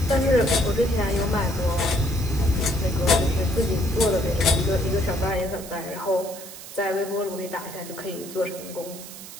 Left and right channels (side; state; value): right; noise; hiss, 14 dB below the sound